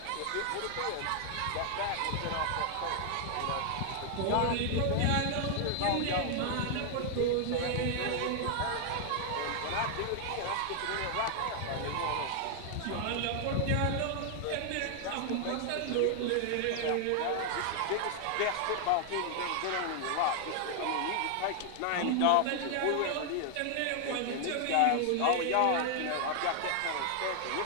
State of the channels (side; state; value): both; different; correlation 0.00